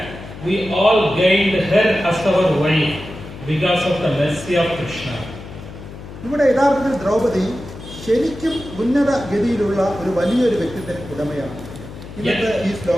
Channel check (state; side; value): noise; left; hum, 14 dB below the sound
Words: we all gained her as our wife because of the mercy of Krishna. ഇവിടെ യഥാർത്ഥത്തിൽ ദ്രൗപദി ശരിക്കും ഉന്നത ഗതിയിലുള്ള ഒരു വലിയൊരു വ്യക്തിത്വത്തിന് ഉടമയാണ്. ഇന്നത്തെ ഈ